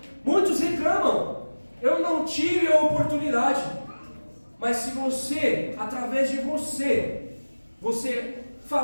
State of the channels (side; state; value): both; inverted; correlation -1.00